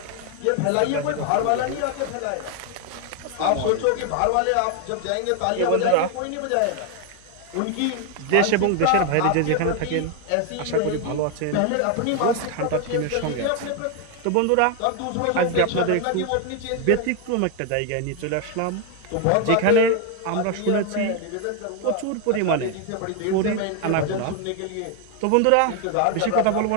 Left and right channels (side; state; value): both; different; correlation 0.01